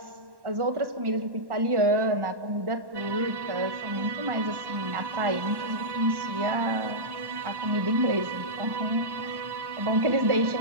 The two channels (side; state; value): left; late; 1.1 ms